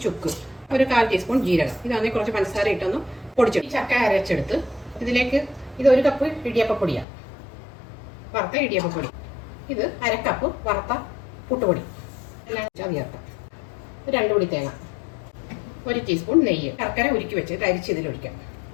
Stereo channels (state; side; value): drops out; right; at 7.1 s